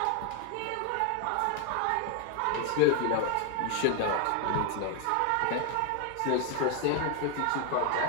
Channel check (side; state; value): both; different; correlation 0.01